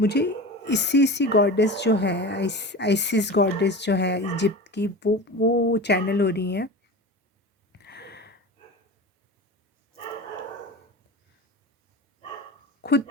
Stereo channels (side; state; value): both; normal; correlation 0.31